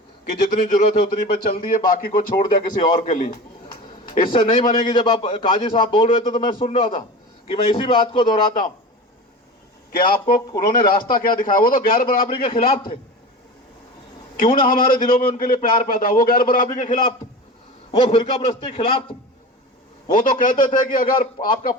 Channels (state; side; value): normal; both; correlation 0.31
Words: कि जितनी जरूरत है उतनी पे चल दिए, बाकी को छोड़ दिया किसी और के लिए। इससे नहीं बनेगी। जब आप काजी साहब बोल रहे थे तो मैं सुन रहा था कि मैं इसी बात को दोहराता हूं कि आपको उन्होंने रास्ता क्या दिखाया। वो तो गैर बराबरी के खिलाफ थे, क्यों ना हमारे दिलों में उनके लिए प्यार पैदा। वो गैर बराबरी के खिलाफ थे, वो फिरका प्रस्ती के खिलाफ थे। वो तो कहते थे कि अगर आपका